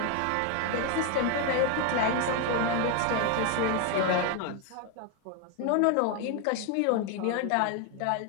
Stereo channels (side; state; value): both; different; correlation 0.01